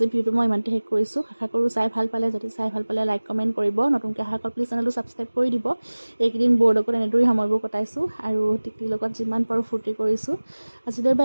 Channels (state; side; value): inverted; both; correlation -1.00